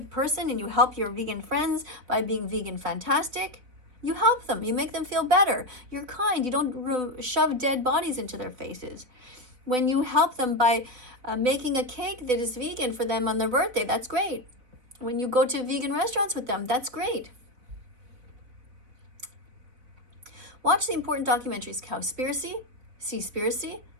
person and you help your vegan friends by being vegan fantastic, you help them. You make them feel better. You're kind. You don't shove dead bodies into their faces. When you help them by making a cake that is vegan for them on their birthday, that's great. When you go to vegan restaurants with them, that's great. Watch the important documentaries, Cowspiracy, Seaspiracy,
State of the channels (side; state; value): left; late; 4.0 ms